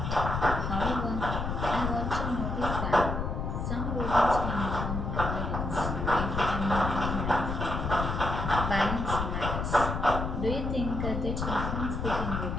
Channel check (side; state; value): left; noise; rumble, 2 dB below the sound